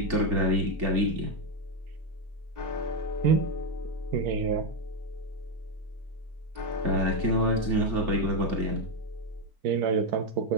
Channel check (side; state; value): left; late; 4.4 ms